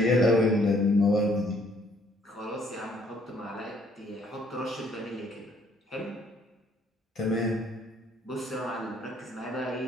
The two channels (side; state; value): both; normal; correlation 0.64